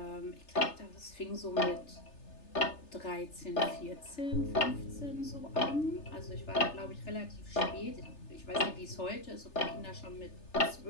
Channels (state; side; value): late; right; 3.3 ms